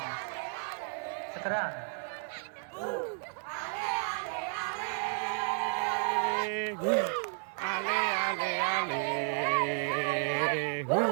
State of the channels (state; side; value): silent; left; 56 dB below the other